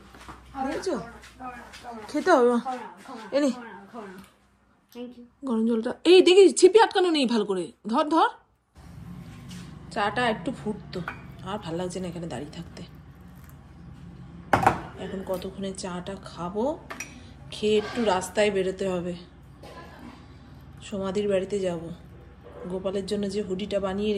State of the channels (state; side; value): identical; both; correlation 1.00